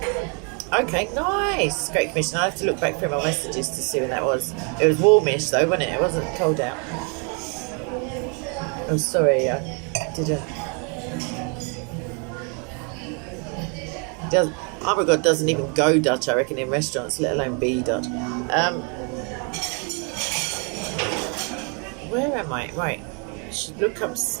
Okay, nice. Great Commission. I have to look back through my messages to see when that was. It was warmish though, wasn't it? It wasn't cold out. Oh, sorry, I didn't. Oh my God, doesn't even go Dutch, I reckon, in restaurants, let alone be Dutch. Where am I? Right. Should look up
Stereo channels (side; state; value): left; quieter; 36.6 dB